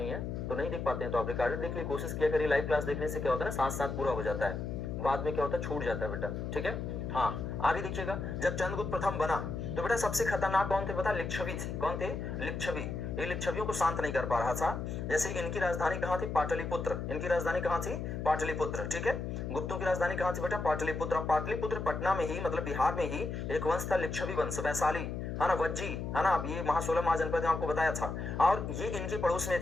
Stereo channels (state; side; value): noise; left; hum, 4 dB below the sound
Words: है, तो नहीं देख पाते हैं तो आप रिकॉर्डेड देख लिए, कोशिश किया करिए। लाइव क्लास देखने से क्या होता है ना, साथ साथ पूरा हो जाता है, बाद में क्या होता है छूट जाता है बेटा। ठीक है, हाँ आगे देखिएगा। जब चंद्रगुप्त प्रथम बना तो बेटा सबसे खतरनाक कौन थे पता, लिच्छवी थे। कौन थे, लिच्छवी। ये लिच्छवियों को शांत नहीं कर पा रहा था। जैसे इनकी राजधानी कहाँ थी, पाटलिपुत्र। इनकी राजधानी कहाँ थी, पाटलिपुत्र। ठीक है, गुप्तों की राजधानी कहाँ थी बेटा, पाटलिपुत्र। पाटलिपुत्र पटना में ही, मतलब बिहार में ही एक वंश था लिच्छवी वंश, वैशाली, है ना, वज्जी, है ना। अब ये महासोलह महाजनपद में आपको बताया था, और ये इनके पड़ोस में